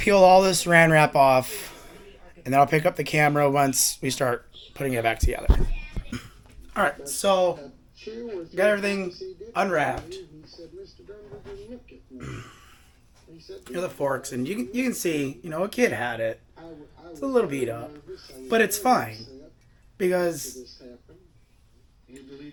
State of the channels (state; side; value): identical; both; correlation 1.00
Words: peel all this Saran wrap off, and then I'll pick up the camera once we start putting it back together. All right, so got everything unwrapped. Here's the forks, and you can see, you know, a kid had it. It's a little beat up, but it's fine because